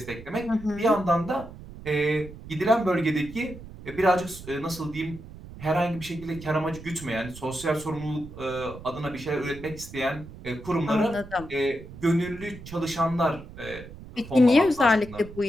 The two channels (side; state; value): right; noise; rumble, 15 dB below the sound